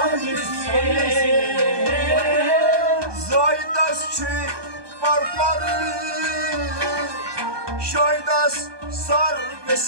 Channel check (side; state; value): left; late; 1.2 ms